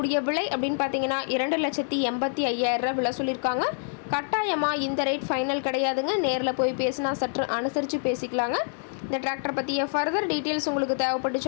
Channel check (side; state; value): right; silent; 61 dB below the other